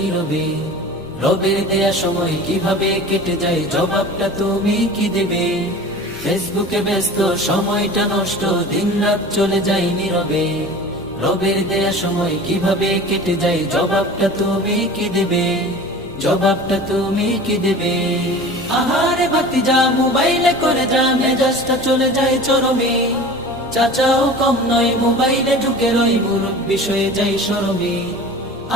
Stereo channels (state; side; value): noise; left; rumble, 23 dB below the sound